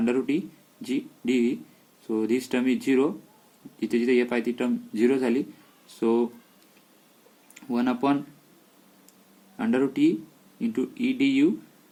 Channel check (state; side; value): identical; both; correlation 1.00